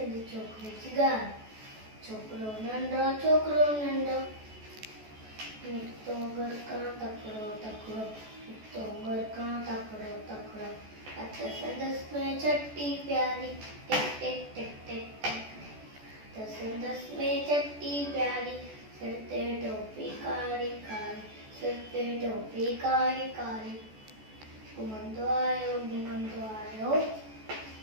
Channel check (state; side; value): late; left; 14 ms